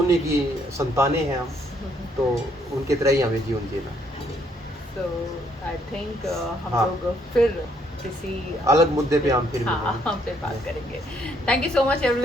की संतानें हैं हम, तो उनके तरह ही हमें जीवन जीना। तो आई थिंक हम हाँ। लोग फिर किसी अलग मुद्दे पे हम फिर हाँ, मिलेंगे। हम पे बात करेंगे। Thank you so much thank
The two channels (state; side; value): normal; both; correlation 0.69